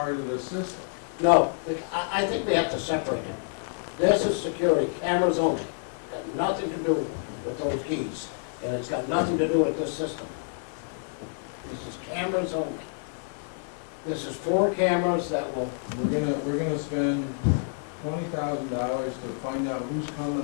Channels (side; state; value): right; silent; 59 dB below the other